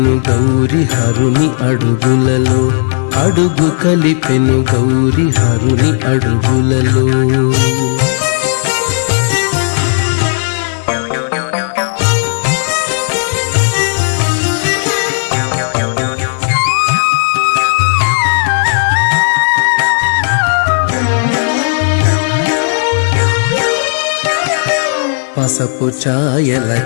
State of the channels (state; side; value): silent; right; digital silence